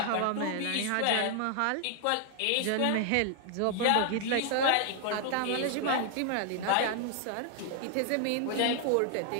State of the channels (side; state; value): both; different; correlation 0.00